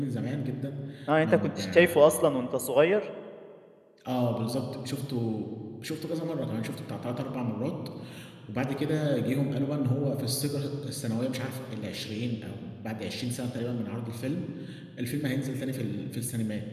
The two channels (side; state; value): both; identical; correlation 1.00